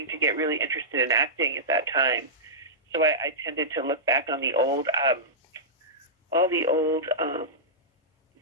to get really interested in acting at that time, so I tended to look back on the old, all the old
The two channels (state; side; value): normal; both; correlation -0.14